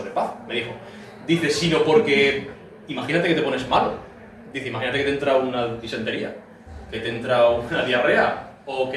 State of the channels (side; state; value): both; identical; correlation 1.00